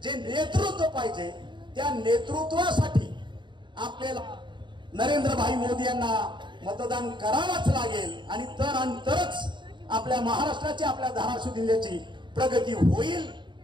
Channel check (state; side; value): late; left; 0.23 ms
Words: जे नेतृत्व पाहिजे, त्या नेतृत्वासाठी आपल्याला नरेंद्र भाई मोदी यांना मतदान करावंच लागेल. आणि तरच आपल्या महाराष्ट्राची, आपल्या धाराशिव जिल्ह्याची प्रगती होईल